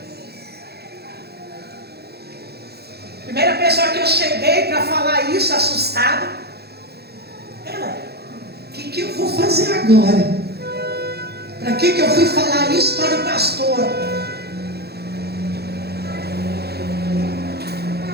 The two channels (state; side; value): late; left; 0.47 ms